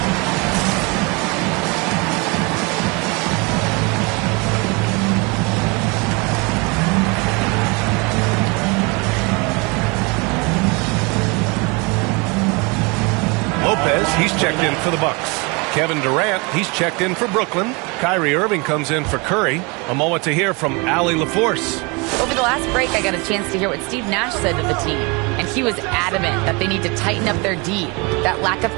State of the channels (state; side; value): quieter; left; 28.8 dB